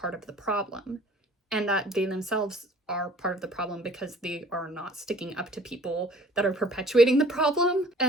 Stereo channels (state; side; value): normal; both; correlation 0.52